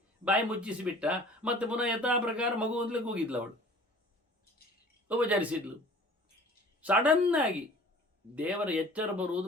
ಬಾಯಿ ಮುಚ್ಚಿಸಿಬಿಟ್ಟ. ಮತ್ತೆ ಪುನಃ ಯಥಾ ಪ್ರಕಾರ ಮಗು ಅಂತಲೇ ಕೂಗಿದ್ಲು. ಅವಳು ಉಪಚರಿಸಿದ್ಲು. ಸಡನ್ನಾಗಿ ದೇವರ ಎಚ್ಚರ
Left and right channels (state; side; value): normal; both; correlation 0.47